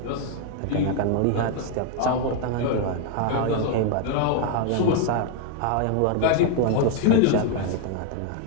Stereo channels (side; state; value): both; different; correlation 0.00